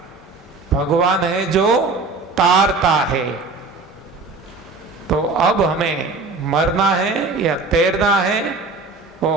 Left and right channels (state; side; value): quieter; left; 3.9 dB